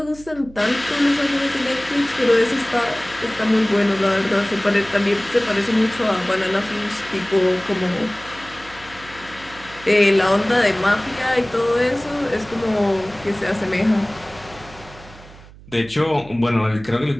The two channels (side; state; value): right; noise; hum, 20 dB below the sound